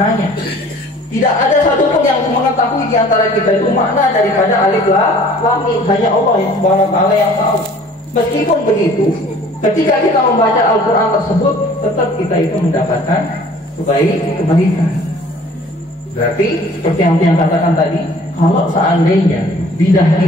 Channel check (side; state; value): both; normal; correlation 0.51